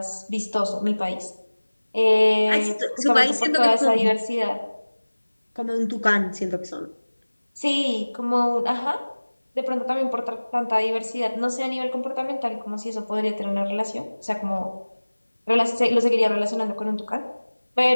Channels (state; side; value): inverted; both; correlation -1.00